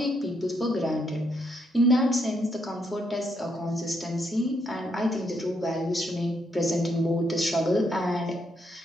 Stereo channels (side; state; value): both; normal; correlation 0.76